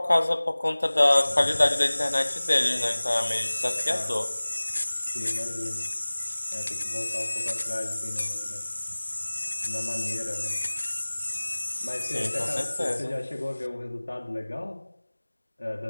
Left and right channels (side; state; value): both; inverted; correlation -1.00